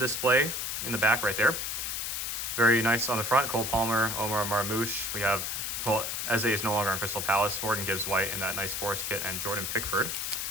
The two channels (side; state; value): left; noise; hiss, 2 dB below the sound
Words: in the back right there. Very nice on the front. Cole Palmer, Omar Marmouche. We have, Eze is no longer on Crystal Palace. Morgan Gibbs-White in that nice Forest kit, and Jordan Pickford.